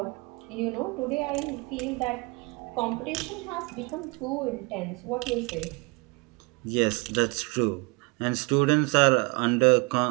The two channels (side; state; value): left; quieter; 28.5 dB